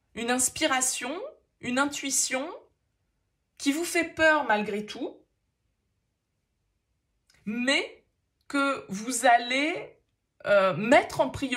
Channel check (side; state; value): both; identical; correlation 1.00